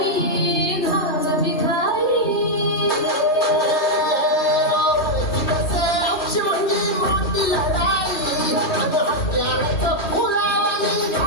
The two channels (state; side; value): late; right; 3.1 ms